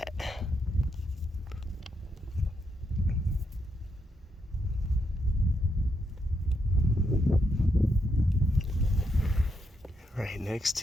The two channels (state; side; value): normal; both; correlation 0.80